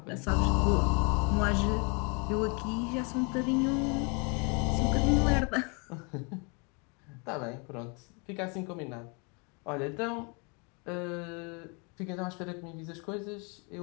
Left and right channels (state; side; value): quieter; right; 33.2 dB